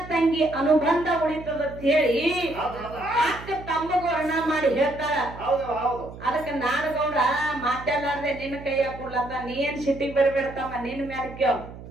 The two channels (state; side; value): noise; right; hum, 14 dB below the sound